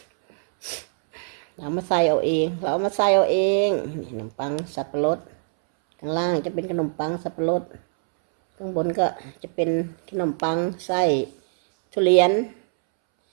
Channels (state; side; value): silent; left; 63 dB below the other